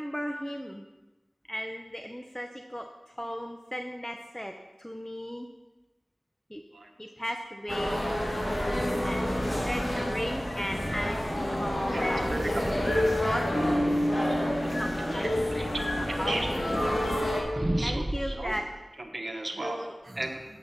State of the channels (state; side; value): normal; both; correlation 0.97